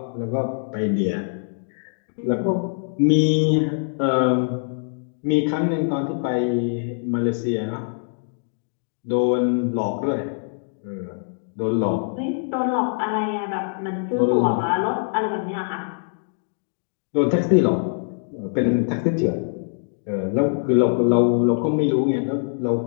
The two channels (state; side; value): silent; right; digital silence